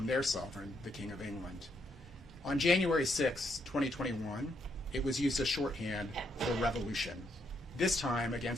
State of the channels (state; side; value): normal; both; correlation 0.76